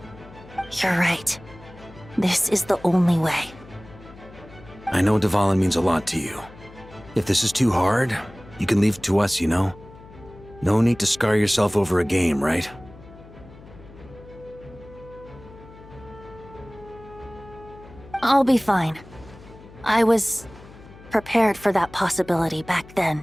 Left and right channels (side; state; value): left; noise; hum, 20 dB below the sound